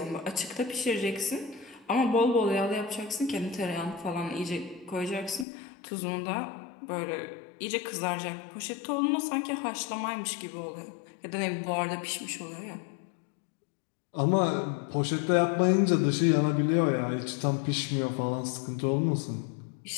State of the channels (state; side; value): drops out; right; at 5.5 s